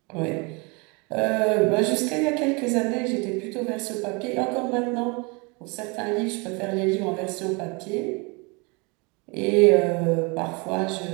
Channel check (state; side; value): quieter; left; 29.7 dB